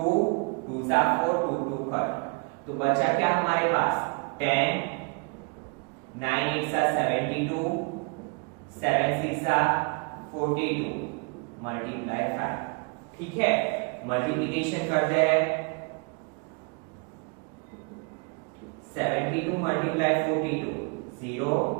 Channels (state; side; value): quieter; left; 33.3 dB